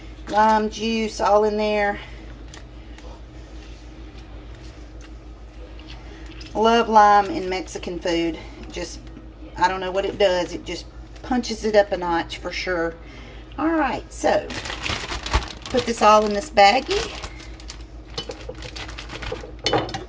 Lime juice all in there. Love lime in Mexican food. Just, I don't know what it does. It just punches it up a notch for sure. Alright, so put this all in this baggie.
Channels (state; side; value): identical; both; correlation 1.00